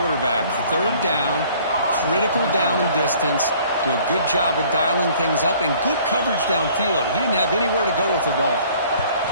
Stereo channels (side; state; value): both; inverted; correlation -0.55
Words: Third down, critical down and distance. Do a good job of dialing things up and good coverage downfield. He didn't have anywhere to go with the ball.